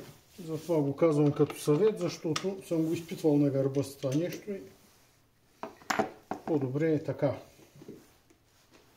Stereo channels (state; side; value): identical; both; correlation 1.00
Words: Затова го казвам като съвет, защото съм го изпитвал на гърба с това нещо и по-добре е така.